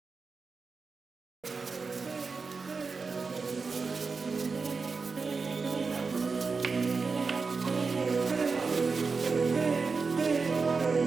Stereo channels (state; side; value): quieter; left; 4.6 dB